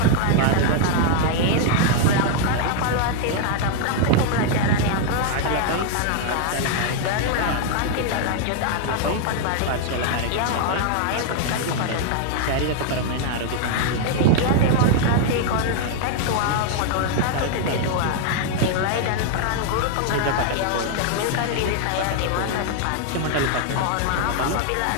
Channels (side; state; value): both; different; correlation 0.00